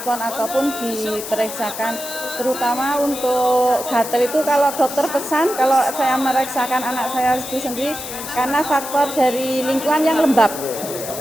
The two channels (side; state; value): left; noise; hiss, 9 dB below the sound